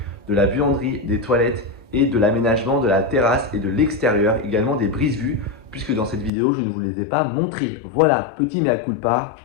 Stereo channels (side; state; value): right; drops out; at 6.3 s